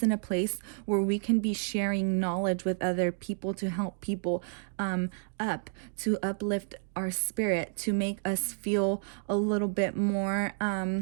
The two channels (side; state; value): left; silent; digital silence